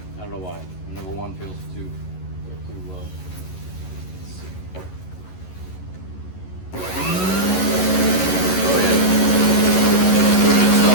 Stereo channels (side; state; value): right; late; 11 ms